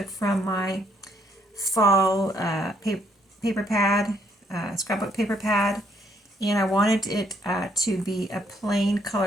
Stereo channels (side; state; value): both; normal; correlation 0.69